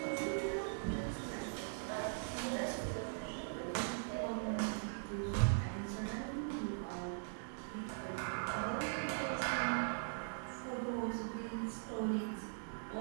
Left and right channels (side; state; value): left; silent; 50 dB below the other